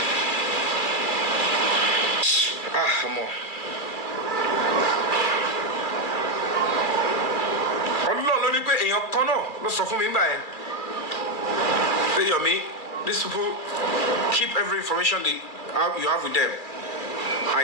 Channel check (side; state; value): right; late; 2.3 ms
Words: Come on. Yomi, these people keep every information you have with them. I